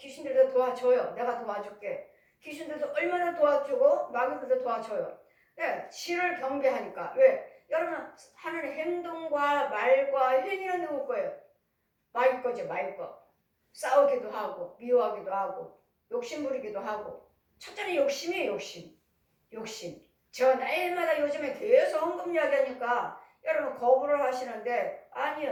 도와줘요. 내가 도와줄게. 귀신들도 얼마나 도와주고 마귀들도 도와줘요. 네, 지를 경배하니까. 왜? 여러분 하는 행동과 말과 행위는 누구 거예요? 마귀 거죠. 마귀 거. 싸우기도 하고 미워하기도 하고 욕심 부리기도 하고 첫째는 욕심이에요. 욕심. 저 날마다 요즘에 계속 헌금 이야기하니까 여러분 거부를 하시는데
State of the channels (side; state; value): both; identical; correlation 1.00